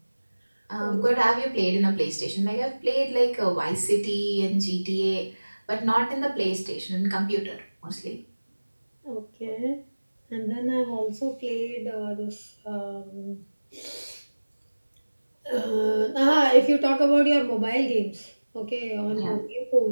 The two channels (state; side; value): inverted; both; correlation -1.00